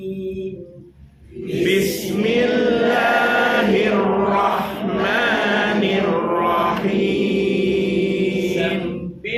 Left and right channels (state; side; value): identical; both; correlation 1.00